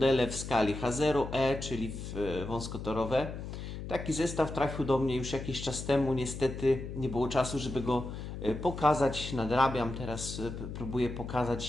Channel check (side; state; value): left; noise; hum, 8 dB below the sound